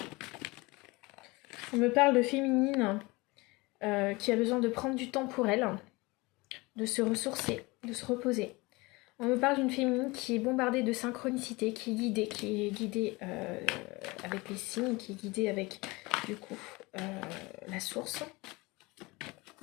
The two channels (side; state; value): right; quieter; 23.8 dB